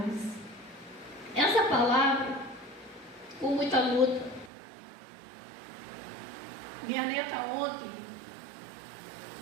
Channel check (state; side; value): drops out; left; at 4.5 s